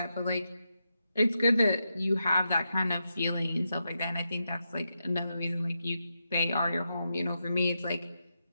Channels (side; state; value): both; inverted; correlation -0.86